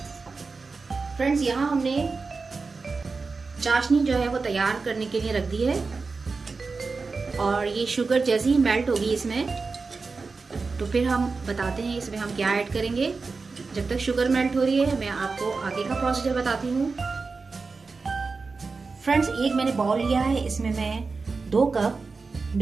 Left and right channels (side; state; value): left; quieter; 4.3 dB